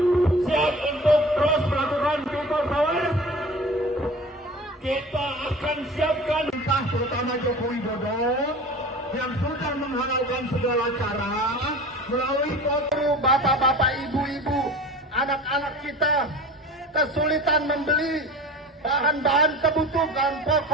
Siap untuk terus melakukan people power. kita akan siapkan entah terutama Joko Widodo yang sudah menghalalkan segala cara melalui foto bapak-bapak, ibu-ibu, anak-anak kita kesulitan membeli bahan-bahan kebutuhan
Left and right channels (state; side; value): normal; both; correlation 0.38